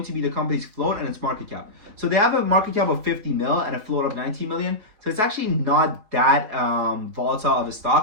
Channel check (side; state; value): left; late; 4.8 ms